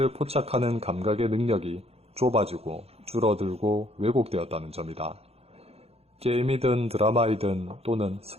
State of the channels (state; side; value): late; left; 0.29 ms